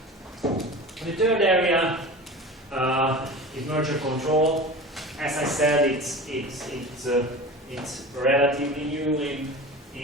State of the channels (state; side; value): normal; both; correlation 0.33